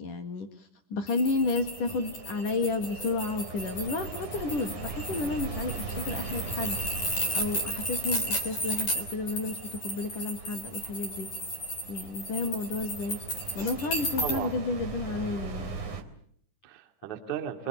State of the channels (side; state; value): right; late; 10 ms